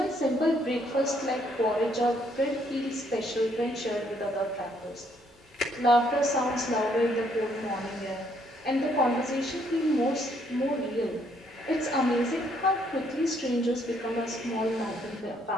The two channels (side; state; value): both; normal; correlation 0.69